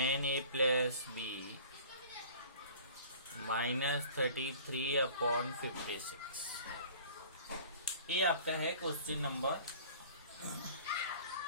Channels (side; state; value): both; inverted; correlation -0.46